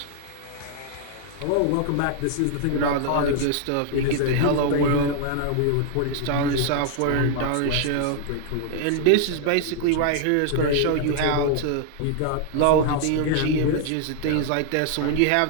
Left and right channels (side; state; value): both; different; correlation 0.00